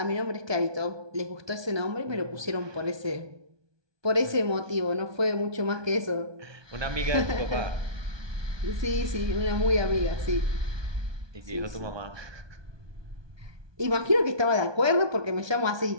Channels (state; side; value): late; left; 1.2 ms